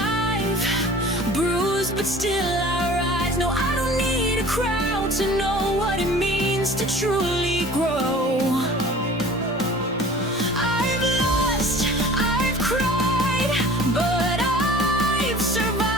bruised but still I rise. No, I don't need a crowd to know what it means to truly grow. I've lost, I've cried, but I've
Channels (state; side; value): normal; both; correlation 0.45